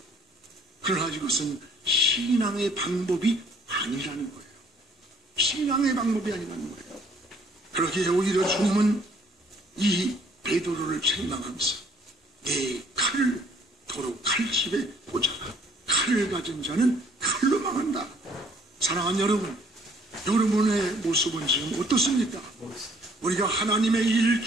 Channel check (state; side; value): normal; both; correlation 0.61